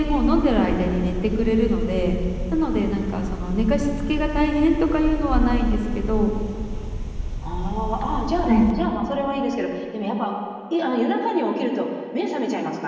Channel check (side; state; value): both; identical; correlation 1.00